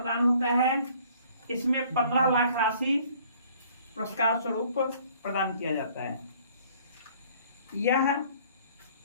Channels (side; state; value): both; inverted; correlation -0.57